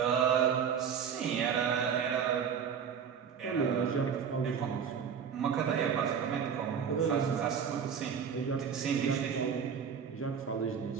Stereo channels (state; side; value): quieter; left; 7.2 dB